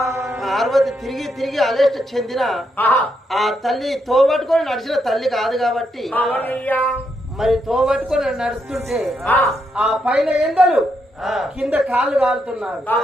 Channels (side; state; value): both; normal; correlation 0.79